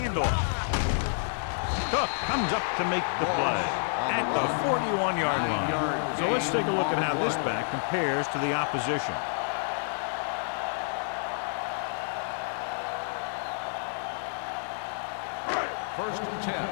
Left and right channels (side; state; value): right; silent; digital silence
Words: Cook comes up to make the play at the 41-yard line. So let's take a look at how this back compares to the opposition. First and 10.